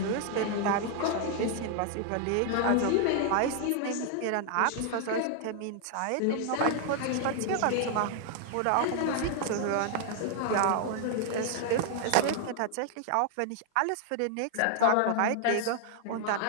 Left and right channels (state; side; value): different; both; correlation 0.00